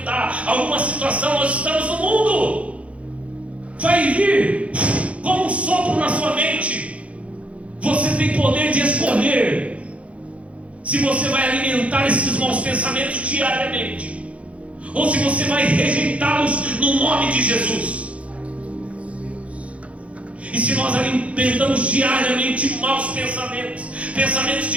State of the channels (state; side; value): late; left; 0.063 ms